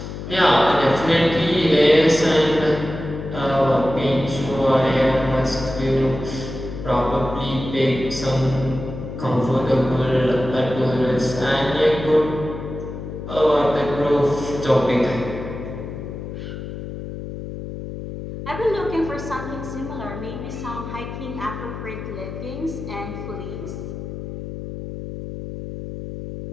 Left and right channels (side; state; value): left; noise; hum, 8 dB below the sound